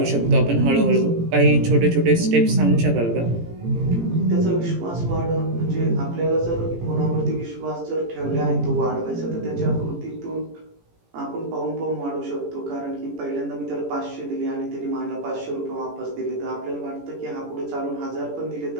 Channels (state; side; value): late; left; 18 ms